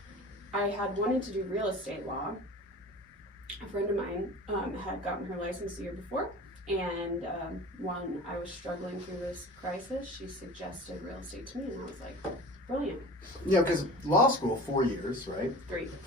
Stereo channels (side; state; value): both; normal; correlation 0.38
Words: I had wanted to do real estate law. A friend of mine had gotten her license the year before, and when I was struggling through this crisis, she suggested real estate to me, and I was like, brilliant. Yeah, because law school, 4 years, right? 3.